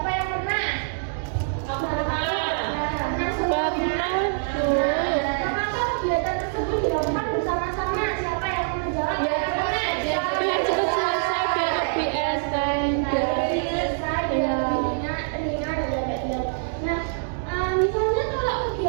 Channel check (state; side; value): silent; left; 62 dB below the other